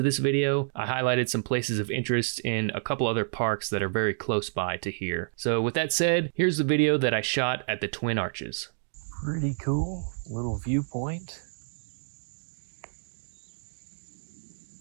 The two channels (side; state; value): left; silent; digital silence